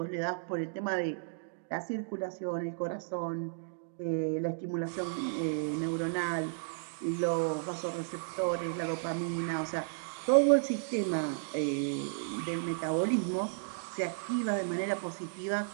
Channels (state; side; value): silent; left; digital silence